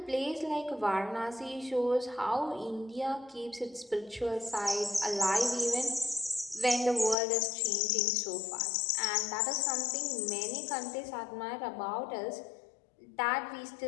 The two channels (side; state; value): right; drops out; at 7.2 s